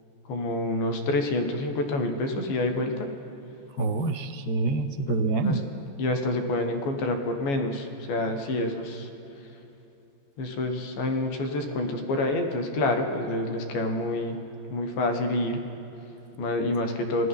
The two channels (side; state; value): right; late; 14 ms